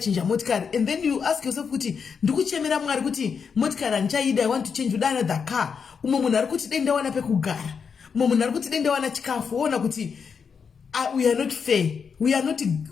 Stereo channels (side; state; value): right; quieter; 6.2 dB